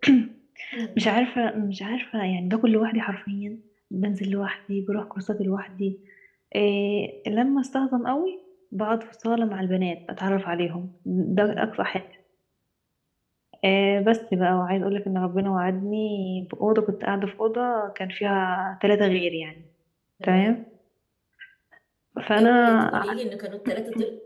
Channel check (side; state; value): both; identical; correlation 1.00